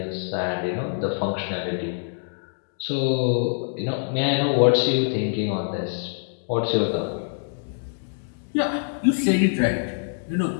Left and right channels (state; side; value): silent; right; digital silence